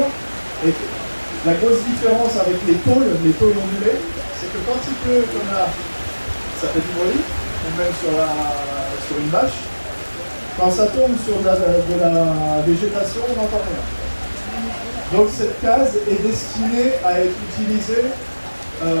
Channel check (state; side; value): inverted; both; correlation -1.00